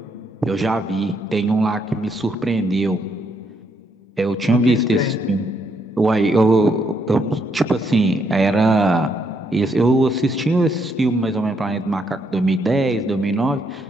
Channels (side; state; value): both; normal; correlation 0.75